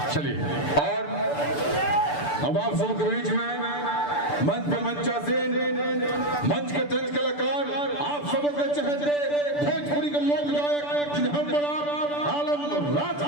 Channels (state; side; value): late; right; 6.9 ms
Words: चलिए और अब आप सबके बीच में मंच पे मंचासीन मंच के तंज कलाकार आप सबों के चहेते भोजपुरी के लोक गायक जिन्हें हम बड़ा आलम राज